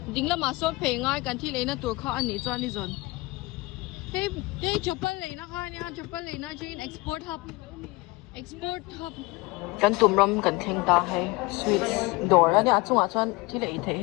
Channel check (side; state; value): right; quieter; 23.0 dB